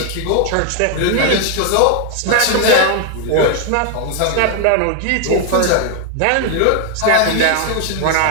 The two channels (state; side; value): different; both; correlation 0.00